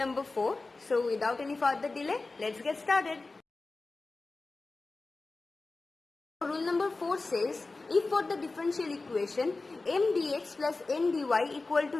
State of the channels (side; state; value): right; quieter; 3.5 dB